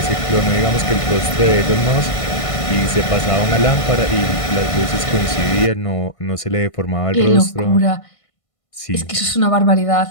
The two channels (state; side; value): late; right; 1.5 ms